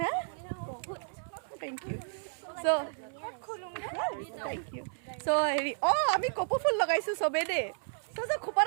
thank you so' thank you so' হেৰি আমি কপৌ ফুল লগাইছোঁ চবেই দেই চ'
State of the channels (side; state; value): left; silent; 56 dB below the other